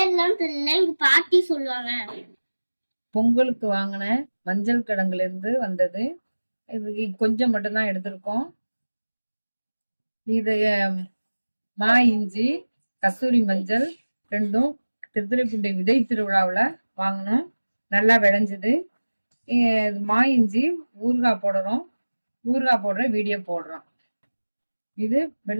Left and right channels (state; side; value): inverted; both; correlation -1.00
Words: தெரியல, எங்க பாட்டி சொல்லுவாங்க. பொங்கலுக்கு வாங்கின மஞ்சள் கிழங்குல இருந்து வந்தது. இது கொஞ்சம் மட்டும்தான் எடுத்திருக்கோம். இது மா இஞ்சி, கஸ்தூரி மஞ்சள் ரெண்டும் திருத்துறைப்பூண்டி விதை திருவிழாவில் வாங்கினோம். நல்லா விளைஞ்சுது. மா இஞ்சி ஊறுகாய் போடுறோம். ஊறுகாய் போடுற வீடியோ போடுறோம். இது